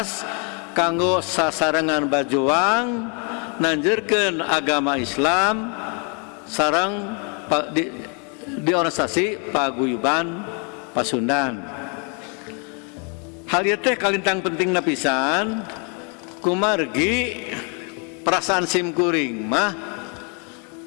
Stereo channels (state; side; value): quieter; right; 36.8 dB